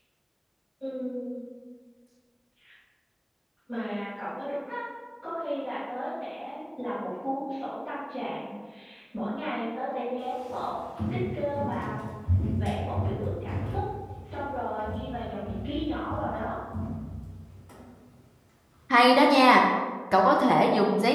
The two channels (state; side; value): identical; both; correlation 1.00